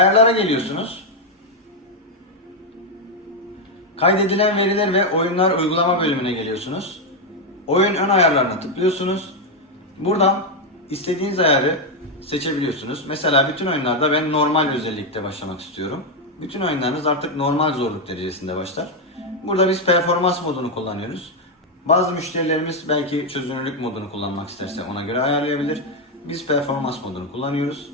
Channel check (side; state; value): both; normal; correlation 0.03